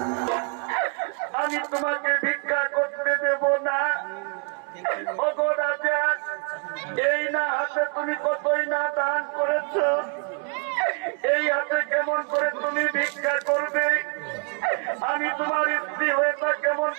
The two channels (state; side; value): quieter; left; 38.6 dB